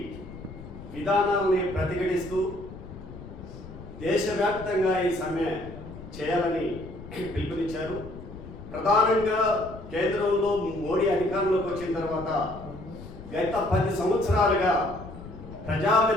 విధానాలని ప్రతిఘటిస్తూ దేశవ్యాప్తంగా ఈ సమ్మె చేయాలని పిలుపునిచ్చారు. ప్రధానంగా కేంద్రంలో మోడీ అధికారంలోకి వచ్చిన తర్వాత గత 10 సంవత్సరాలుగా ప్రజా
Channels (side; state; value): left; noise; rumble, 14 dB below the sound